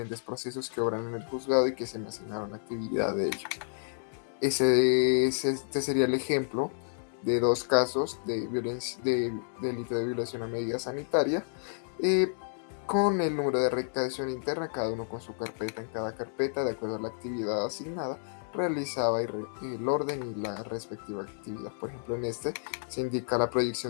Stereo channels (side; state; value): right; silent; digital silence